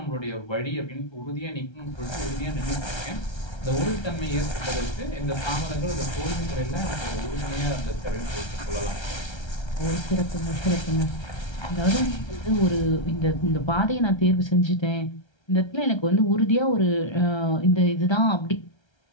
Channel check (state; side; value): late; right; 1.3 ms